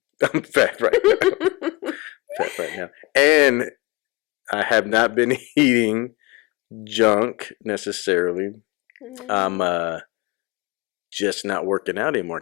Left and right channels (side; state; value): right; quieter; 24.4 dB